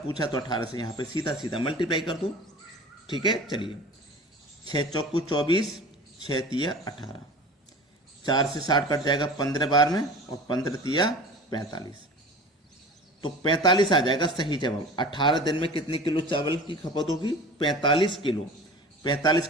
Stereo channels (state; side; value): normal; both; correlation 0.39